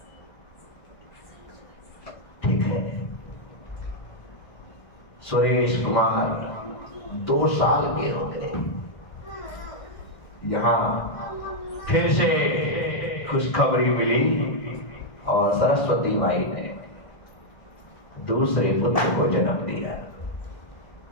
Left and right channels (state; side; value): late; right; 1.6 ms